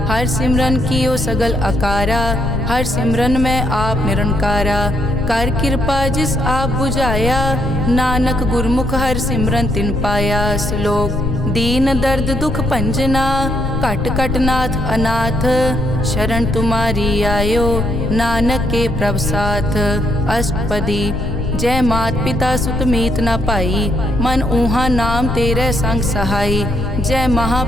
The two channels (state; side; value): noise; left; rumble, 4 dB below the sound